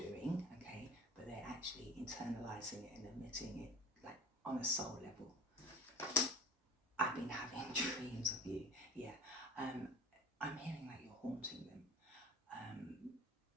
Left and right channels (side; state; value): both; normal; correlation 0.38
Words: okay, but they're actually internalizing it and admitting it, like on a soul level. I've been having dreams of you, yeah. I'm hearing like you're haunting them.